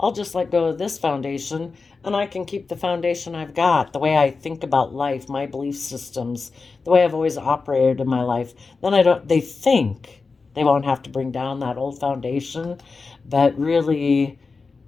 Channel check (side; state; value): right; quieter; 4.4 dB